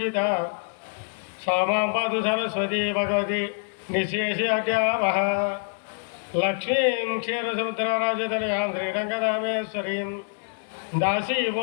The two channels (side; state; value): right; silent; digital silence